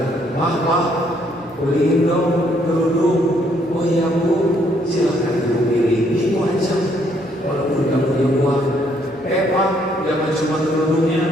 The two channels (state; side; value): noise; right; hum, 27 dB below the sound